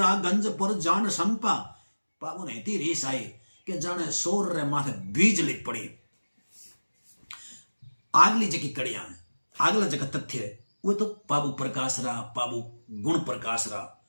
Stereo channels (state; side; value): inverted; both; correlation -1.00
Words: गंज पर जान संपा। बाबू ने इतनी रीस आई कि जाने सोर रे माथे बीजली पड़ी। आगली जकी कड़िया है, अगला जगह तथ्य है वो तो बाबू प्रकाश रा, बाबू गुण प्रकाश रा